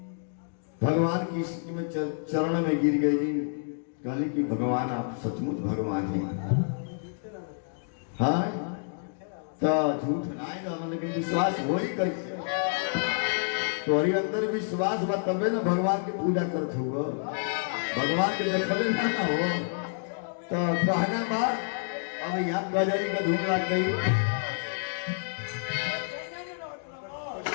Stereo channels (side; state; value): right; silent; digital silence